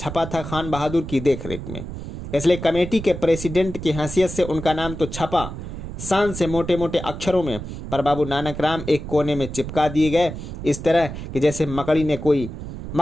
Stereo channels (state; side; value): noise; right; rumble, 9 dB below the sound